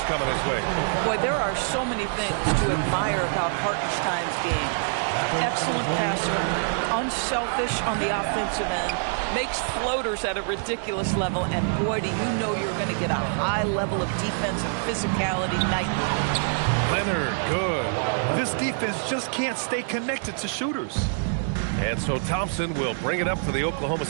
coming his way. Boy, there are so many things to admire about Hartenstein's game. Excellent passer, unselfish on the offensive end, makes floaters at a ridiculous level, and boy, do you know you're going to get a high level of defensive physicality nightly. Leonard, good. This defense just can't stay connected to shooters. And so Thompson will bring it up for the Oklahoma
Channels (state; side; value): silent; left; digital silence